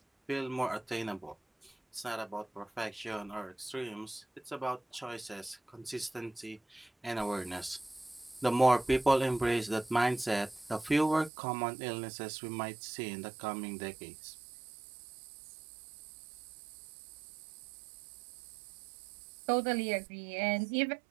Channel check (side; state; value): left; drops out; at 11.3 s